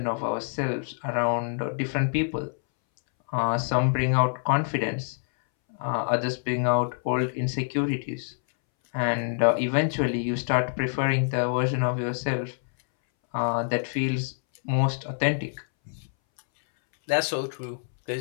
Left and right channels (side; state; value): right; silent; 61 dB below the other